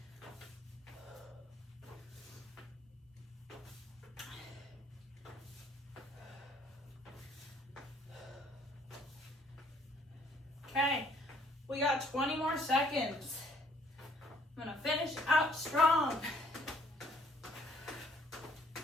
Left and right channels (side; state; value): both; normal; correlation 0.63